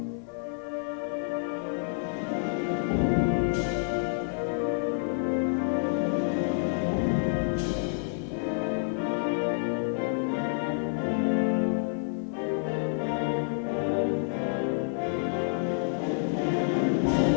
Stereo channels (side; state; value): right; silent; 59 dB below the other